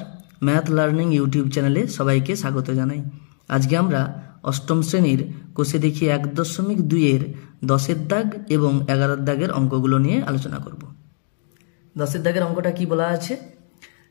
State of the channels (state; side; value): silent; right; 65 dB below the other